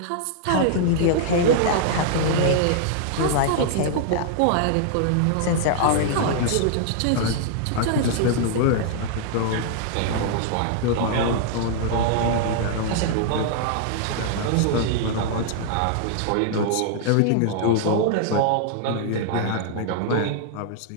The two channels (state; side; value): different; both; correlation -0.01